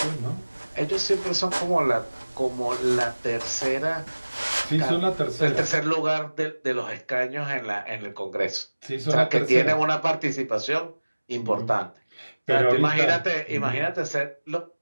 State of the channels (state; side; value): inverted; both; correlation -1.00